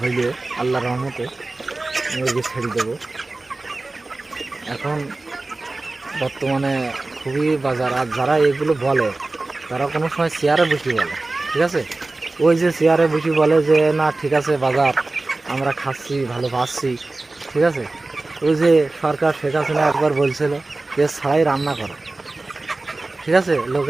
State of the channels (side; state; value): left; quieter; 3.2 dB